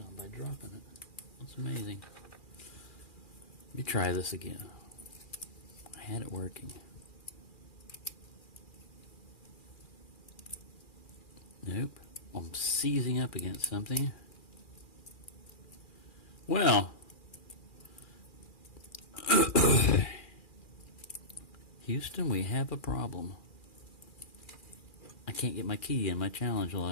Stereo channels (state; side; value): late; right; 2.4 ms